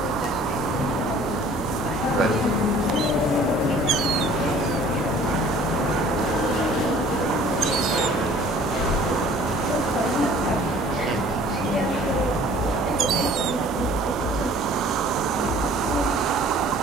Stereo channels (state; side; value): normal; both; correlation 0.51